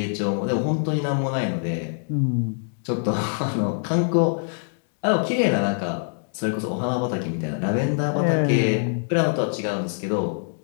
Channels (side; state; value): right; silent; digital silence